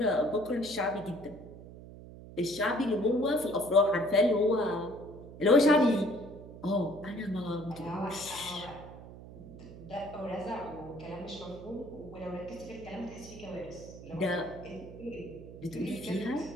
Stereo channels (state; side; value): noise; right; hum, 15 dB below the sound